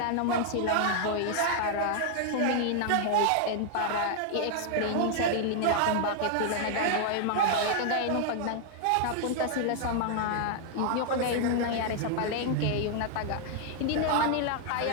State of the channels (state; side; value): different; both; correlation 0.00